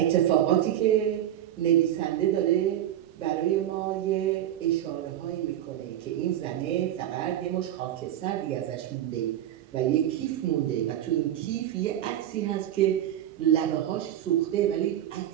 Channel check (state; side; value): quieter; left; 11.7 dB